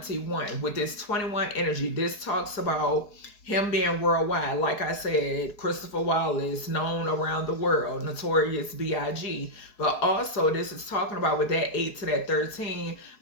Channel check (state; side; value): late; right; 4.7 ms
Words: With this 21 energy, this talks about him being worldwide. Like I said, Christopher Wallace, known around the world, notorious B.I.G. But also this is talking about with that 8 to that 13.